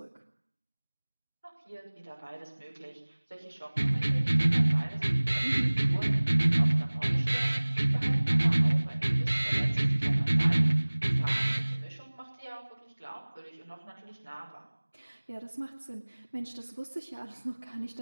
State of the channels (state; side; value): inverted; both; correlation -1.00